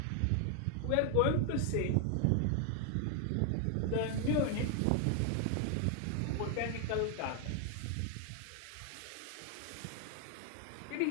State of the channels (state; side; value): different; both; correlation 0.00